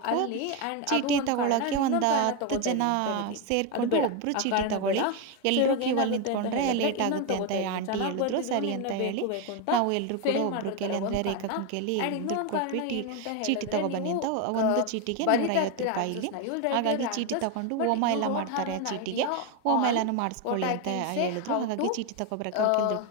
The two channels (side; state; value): both; different; correlation 0.02